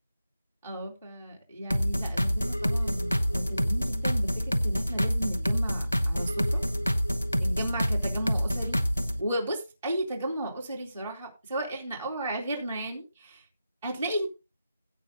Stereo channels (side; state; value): both; inverted; correlation -0.93